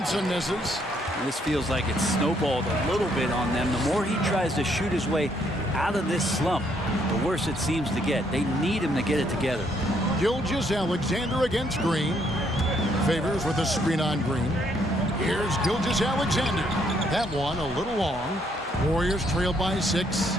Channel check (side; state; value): both; normal; correlation 0.71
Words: misses. This feels like it's snowballed a little bit on them. The more he tries to shoot his way out of this slump, the worse it seems to get. They need him to get it together. Gilgeous-Alexander against Green. Favors with a screen on Green. Here's Gilgeous-Alexander. That one a little long. Warriors trail by 6.